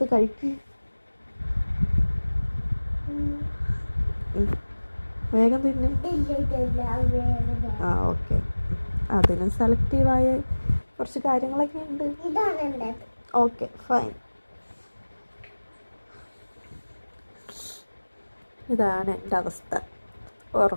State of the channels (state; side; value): inverted; both; correlation -1.00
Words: കഴിക്കും. വേഗം തിന്നും. ആ, ഓക്കെ. അതിനും സെലക്റ്റീവായ കുറച്ച് കാര്യങ്ങളൊക്കെ ഉണ്ട്. Okay, fine. ഇതാണ് എൻ്റെ അവസ്ഥ.